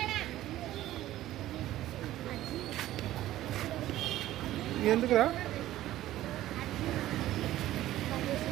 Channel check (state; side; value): quieter; left; 14.5 dB